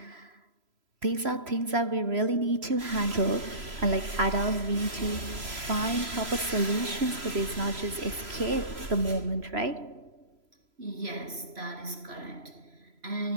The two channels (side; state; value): left; late; 3.0 ms